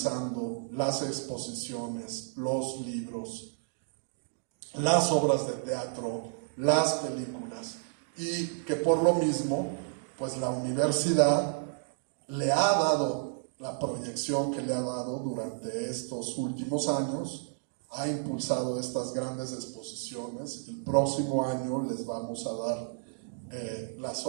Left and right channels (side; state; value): left; silent; digital silence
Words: las exposiciones, los libros, las obras de teatro, las películas, y que por lo mismo, pues la universidad le ha dado la proyección que le ha dado durante estos últimos años, ha impulsado estas grandes exposiciones. El próximo año les vamos a dar la